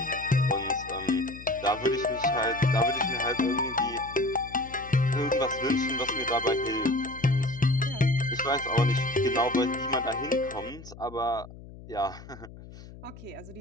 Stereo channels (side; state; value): left; noise; hum, 17 dB below the sound